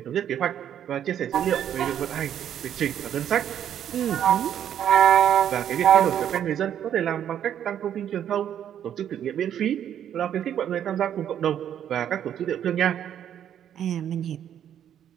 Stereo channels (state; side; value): quieter; left; 9.9 dB